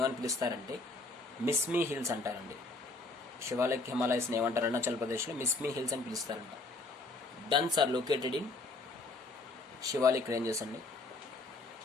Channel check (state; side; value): quieter; right; 3.3 dB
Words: పిలుస్తారంటే మిస్మీ హిల్స్ అంటారండి. శివాలిక్ హిమాలయస్ని ఏమంటారు? అరుణాచల్ ప్రదేశ్లో మిస్మీ హిల్స్ అని పిలుస్తారంట. Duns are located in Shivalik ranges అండి.